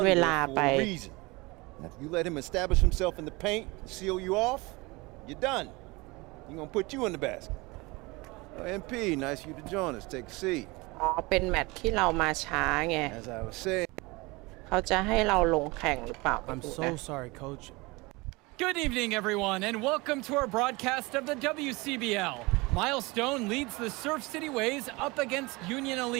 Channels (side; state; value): left; quieter; 24.2 dB